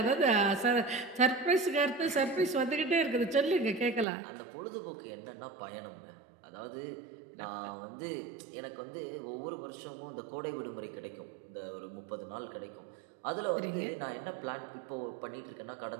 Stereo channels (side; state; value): left; drops out; at 4.0 s